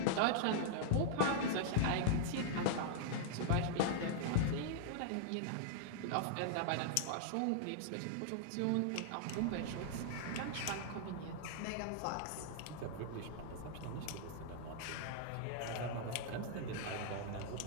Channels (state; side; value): different; both; correlation -0.01